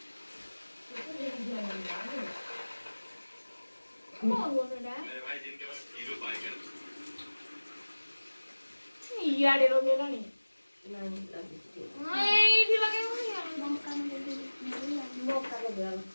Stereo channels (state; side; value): inverted; both; correlation -1.00